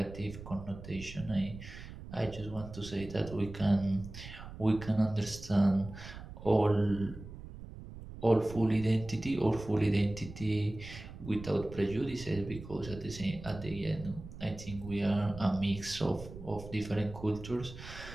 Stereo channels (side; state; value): right; noise; rumble, 13 dB below the sound